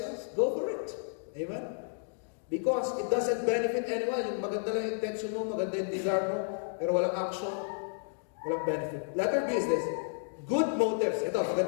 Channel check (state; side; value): silent; right; digital silence